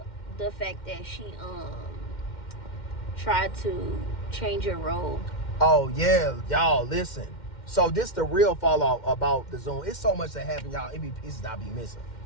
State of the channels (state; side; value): late; right; 2.1 ms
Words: fact that she tried to change your role. Oh yeah, y'all listen. So this the real fallout about the Zoom. It's so much that happened, y'all. It be pieces I be missing.